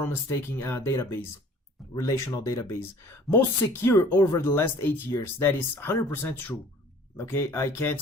taking database, relational database. Most secure over the last 8 years. That is 100% true. Okay, I can't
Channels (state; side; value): normal; both; correlation 0.50